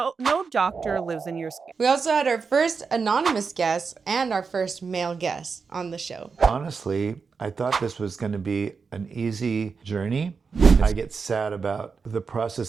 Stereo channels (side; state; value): left; quieter; 5.2 dB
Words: doctor lives in your skin. We also had our first anonymous guest and our first male guest on the show. Honestly, I thought this was going to be an easy journey. I get sad about the